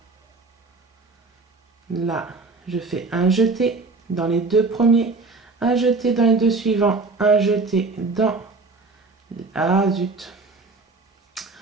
Là, je fais un jeté dans les 2 premiers, un jeté dans les 2 suivants, un jeté dans... Ah zut!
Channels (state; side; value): quieter; left; 3.8 dB